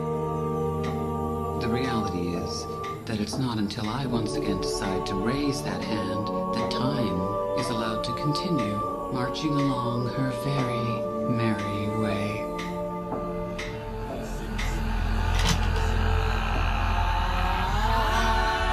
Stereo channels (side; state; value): both; identical; correlation 1.00